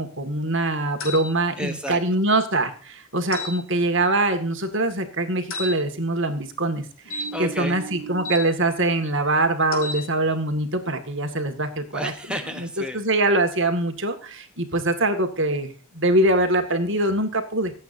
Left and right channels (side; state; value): both; normal; correlation 0.02